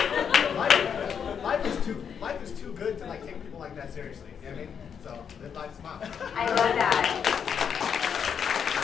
Life is too good to like take people like that seriously. You know what I mean? So live life smile. I love that.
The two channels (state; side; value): quieter; right; 7.3 dB